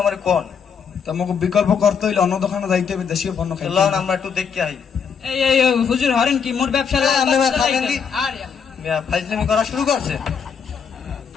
আমার কোন? তো মগো বিকল্প করতে হইলে অন্য দোকানে যাইতে হবে, দেশীয় পণ্য খাইতে চলুন হবে। আমরা একটু দেখতে আই। এই এই এই, হুজুর হরেন কি মোর ব্যবসা হ্যাঁ, আপনি ভাই থাকেন কি? আরে মিয়া ফাইজলামি করা শুরু করছে।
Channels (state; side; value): quieter; right; 6.7 dB